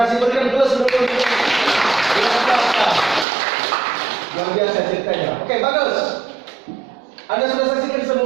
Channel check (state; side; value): drops out; left; at 3.2 s